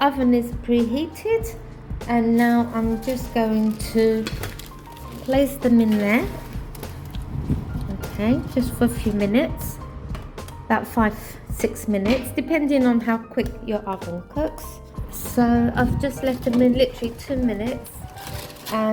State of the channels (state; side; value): identical; both; correlation 1.00